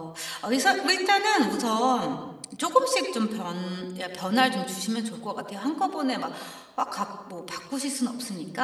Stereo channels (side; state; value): both; identical; correlation 1.00